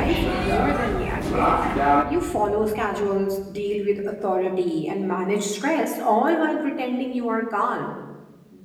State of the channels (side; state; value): both; identical; correlation 1.00